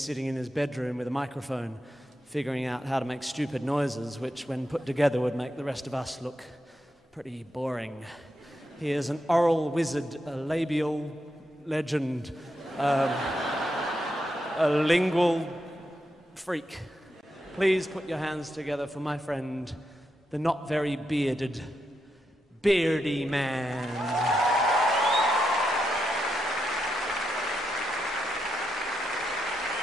in his bedroom with a microphone, figuring out how to make stupid noises, which, when put together, would make the rest of us look pretty boring. He is an oral wizard, a labial legend, a lingual freak. Please put your hands together for my friend, the not very bearded Beardyman.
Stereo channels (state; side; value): normal; both; correlation 0.84